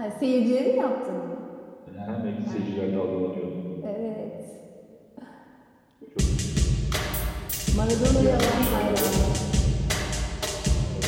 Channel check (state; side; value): identical; both; correlation 1.00